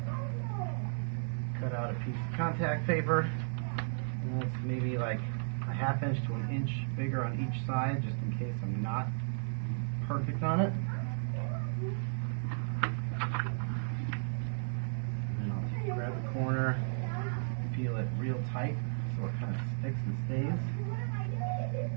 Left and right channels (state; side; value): silent; left; digital silence